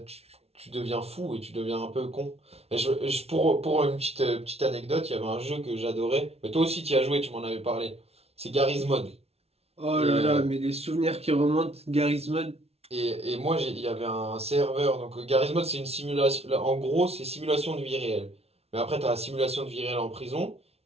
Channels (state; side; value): late; left; 0.30 ms